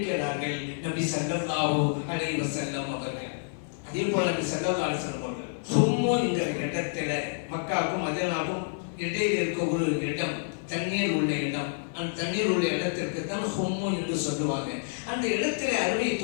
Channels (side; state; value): right; silent; 56 dB below the other